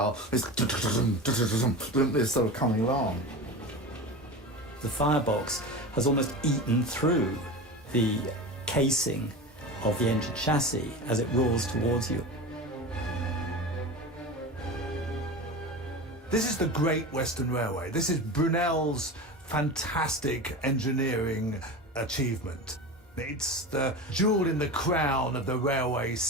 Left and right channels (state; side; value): normal; both; correlation 0.28